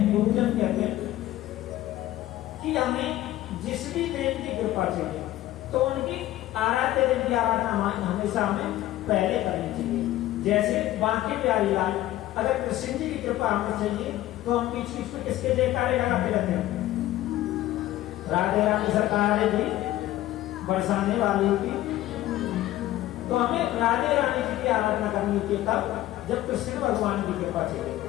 गुरुजन कहते हैं कि हमें जिस भी देव की कृपा चाहिए तो उनकी आराध्य देव की आराधना हमेशा हमें पहले करनी चाहिए। जैसे बांके प्यारी लाल, अगर कृष्ण जी की कृपा हमें चाहिए तो हम बीच बीच में किसके जयकारे लगाते रहते हैं? राधे रानी सरकार की, बरसाने वाली की। तो हमें राधे रानी जी की आराधना करनी होती है तब जब कृष्ण भगवान की कृपा चाहिए,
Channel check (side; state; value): right; quieter; 14.8 dB